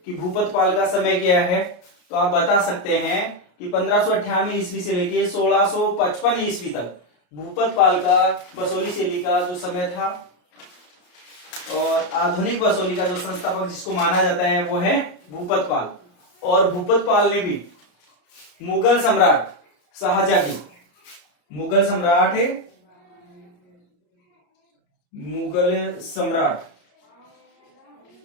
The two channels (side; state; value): right; late; 34 ms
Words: कि भूपतपाल का समय क्या है तो आप बता सकते हैं कि 1598 ईस्वी से लेके 1655 ईस्वी तक भूपतपाल का बसोली शैली का जो समय था। और आधुनिक बसोली का जो संस्थापक जिसको माना जाता है वो है भूपतपाल। और भूपतपाल ने भी मुगल सम्राट शाहजहां की, मुगल सम्राट